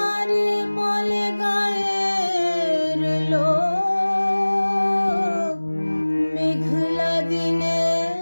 বলে গায়ের লোক। মেঘলা দিনে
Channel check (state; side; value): inverted; both; correlation -1.00